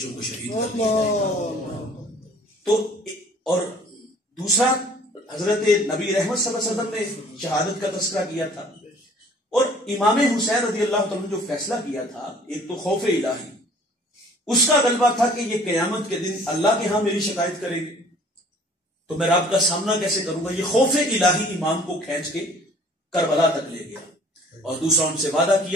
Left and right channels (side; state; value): both; normal; correlation 0.53